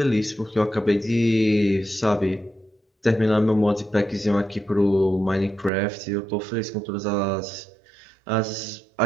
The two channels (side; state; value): left; drops out; at 5.7 s